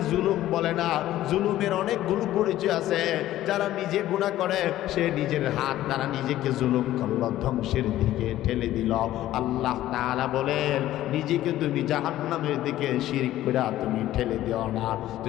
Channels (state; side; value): quieter; right; 14.0 dB